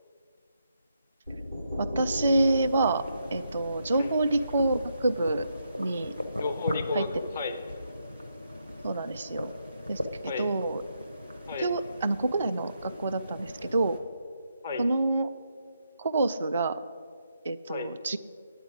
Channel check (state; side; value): inverted; both; correlation -0.80